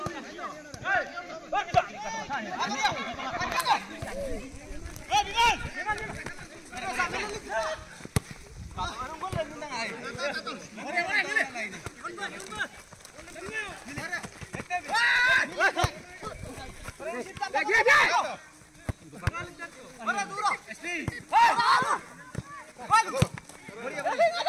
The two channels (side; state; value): both; identical; correlation 1.00